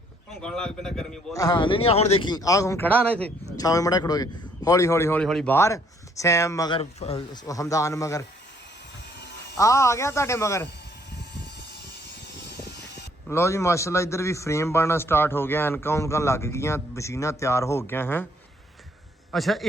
ਭੌਂਕਣ ਲੱਗ ਪੈਂਦਾ ਗਰਮੀ ਬਹੁਤ ਹਾਂ ਨਹੀਂ ਹੁਣ ਦੇਖੀ ਆ ਹੁਣ ਖੜਾ ਨਾ ਇੱਥੇ ਛਾਵੇਂ ਮੜਾ ਖੜੋ ਗਿਆ ਹੌਲੀ ਹੌਲੀ ਹੌਲੀ ਹੌਲੀ ਬਾਹਰ ਸੈਮ ਮਗਰ ਹਮਦਾਨ ਮਗਰ ਆ ਗਿਆ ਤੁਹਾਡੇ ਮਗਰ ਲਓ ਜੀ ਮਾਸ਼ਾਅੱਲਾ ਇੱਧਰ ਵੀ ਫਰੇਮ ਬਣਨਾ ਸਟਾਰਟ ਹੋ ਗਿਆ ਐਨਕਾਂ ਉਨਕਾਂ ਲੱਗ ਗਈਆਂ ਮਸ਼ੀਨਾਂ ਤਿਆਰ ਹੋ ਗਈਆਂ ਹੈ ਅੱਛਾ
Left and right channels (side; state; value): both; normal; correlation 0.65